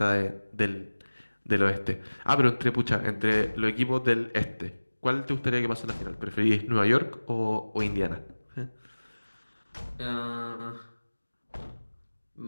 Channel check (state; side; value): inverted; both; correlation -1.00